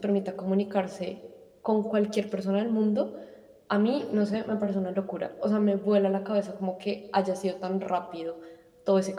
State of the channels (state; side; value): identical; both; correlation 1.00